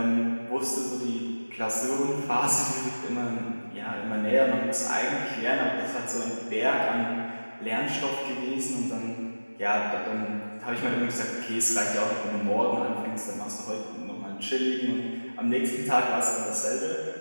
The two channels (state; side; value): inverted; both; correlation -1.00